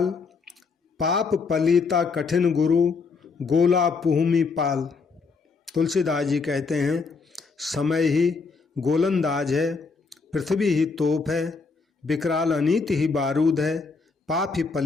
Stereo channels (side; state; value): right; quieter; 4.6 dB